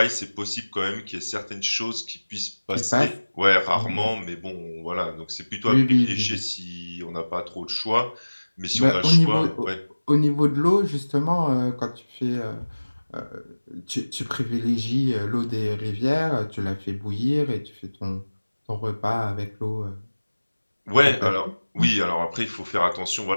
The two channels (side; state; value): both; inverted; correlation -1.00